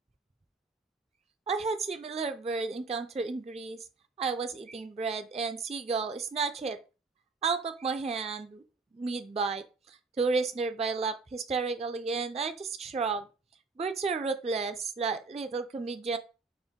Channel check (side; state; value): left; quieter; 4.2 dB